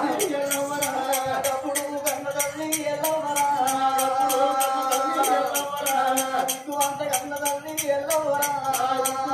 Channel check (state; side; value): identical; both; correlation 1.00